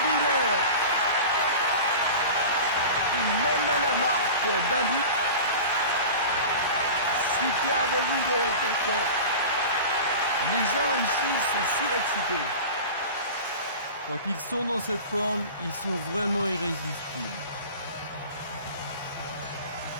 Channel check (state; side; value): inverted; both; correlation -0.34